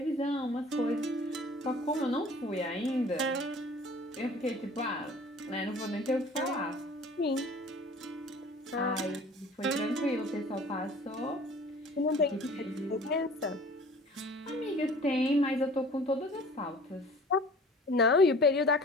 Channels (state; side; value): normal; both; correlation 0.46